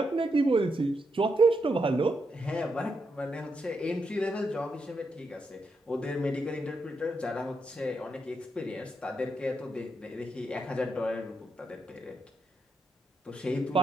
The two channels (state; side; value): normal; both; correlation 0.82